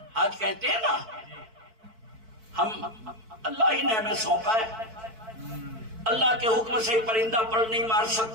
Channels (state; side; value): late; left; 4.5 ms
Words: آج کہتے ہیں نا ہم اللہ ہی نے ہمیں سونپا ہے, اللہ کے حکم سے پرندہ پر نہیں مار